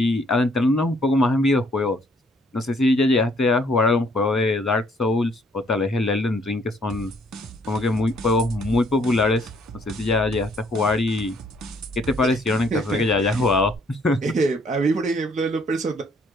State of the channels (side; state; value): both; normal; correlation 0.65